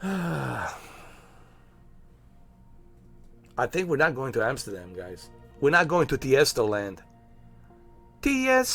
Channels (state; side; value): identical; both; correlation 1.00